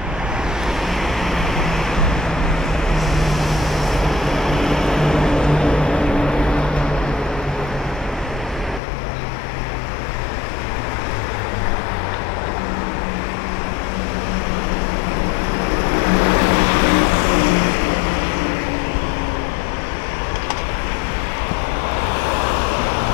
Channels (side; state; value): right; drops out; at 8.8 s